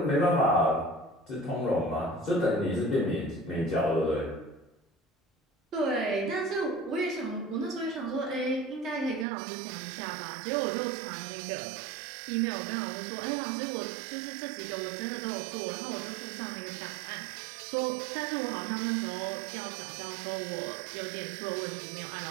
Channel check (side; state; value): left; drops out; at 9.2 s